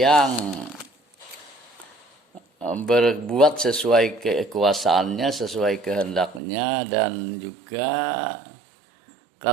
berbuat sesuai kekuasaannya, sesuai kehendaknya, dan juga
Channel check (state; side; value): drops out; left; at 6.4 s